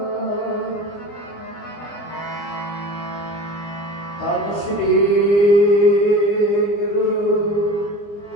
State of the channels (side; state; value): right; late; 24 ms